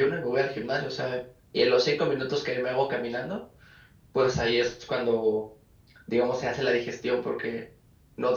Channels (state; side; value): identical; both; correlation 1.00